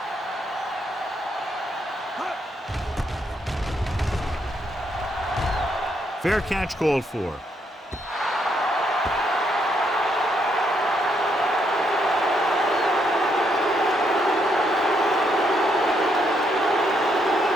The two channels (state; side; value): normal; both; correlation 0.75